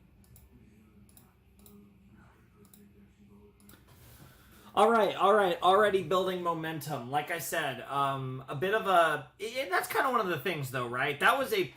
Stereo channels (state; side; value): identical; both; correlation 1.00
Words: All right. Already building momentum. Like I said, a bit of a... And that's kind of one of the things, though, right? That was